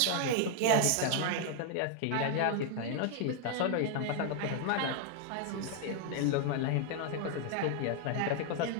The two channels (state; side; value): different; both; correlation 0.00